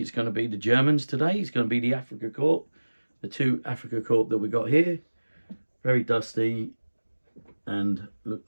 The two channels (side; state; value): both; inverted; correlation -1.00